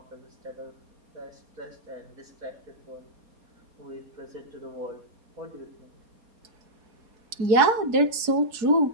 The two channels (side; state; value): left; late; 4.3 ms